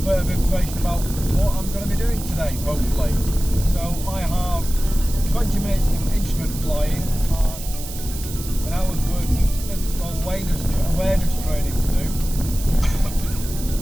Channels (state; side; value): noise; right; hiss, 12 dB below the sound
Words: of information about what I'm going to be doing today, hopefully. So I have 20 minutes of instrument flying and an hour's worth of spin awareness training to do.